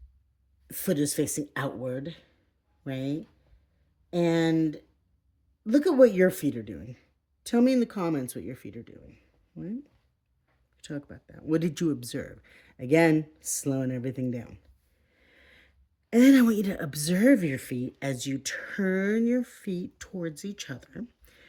foot is facing outward, right? And look at what your feet are doing. Tell me in the comments what your feet are doing, right? Talk about that. What did you observe? Again, slowing everything down. And then I want you to observe your feet as you turn your feet towards each other.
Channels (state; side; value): identical; both; correlation 1.00